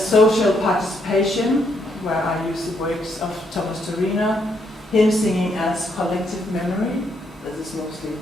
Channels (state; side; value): normal; both; correlation 0.74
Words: social participation, where I use the works of Thomas Torino. Hymn singing as collective memory, this is mostly